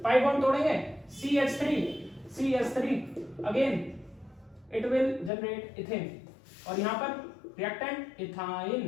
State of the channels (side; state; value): right; drops out; at 5.3 s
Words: पाई बॉन्ड तोड़ेंगे CH3 again it will generate ethane और यहां पर reactant ethyne.